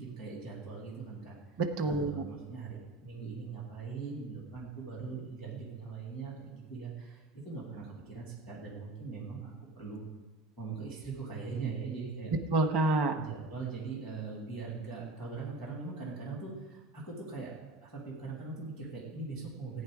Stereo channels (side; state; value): left; quieter; 3.0 dB